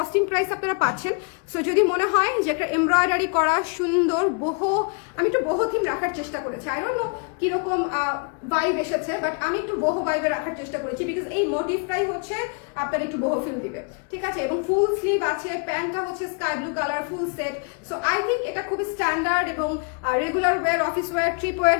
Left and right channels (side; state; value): right; quieter; 36.4 dB